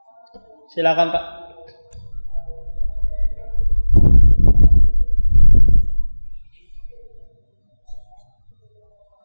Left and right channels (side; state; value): both; inverted; correlation -1.00